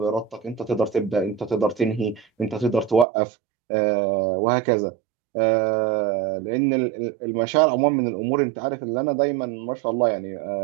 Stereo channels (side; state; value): left; drops out; at 3.1 s